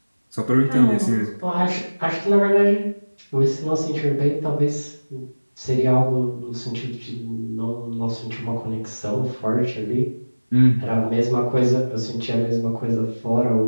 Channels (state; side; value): inverted; both; correlation -1.00